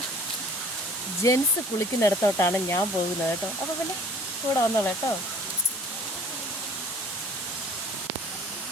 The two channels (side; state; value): both; normal; correlation 0.51